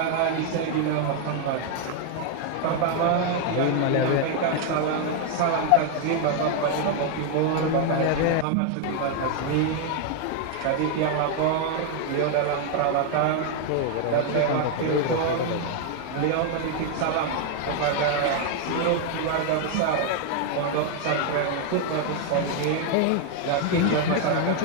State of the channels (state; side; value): different; both; correlation 0.00